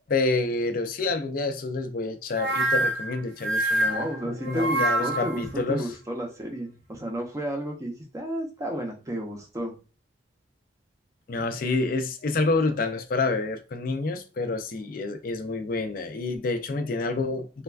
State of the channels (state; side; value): normal; both; correlation 0.42